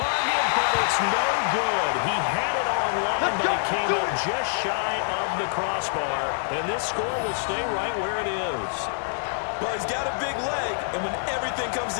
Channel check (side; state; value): right; silent; digital silence